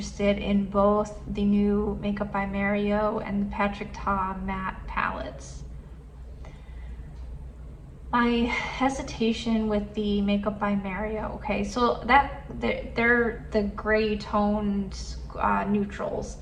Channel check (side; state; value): both; identical; correlation 1.00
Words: in both the new Makeup by Mario and the Patrick Ta matte palettes. My hesitation with the Makeup by Mario, okay, so they're the gray toned neutrals